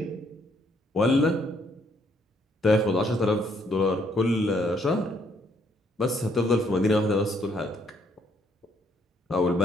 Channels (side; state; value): both; normal; correlation 0.69